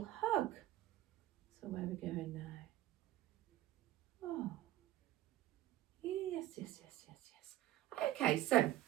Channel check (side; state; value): left; quieter; 14.3 dB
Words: hug. So where are we going now? Oh, yes, yes, yes, yes, yes. Okay, so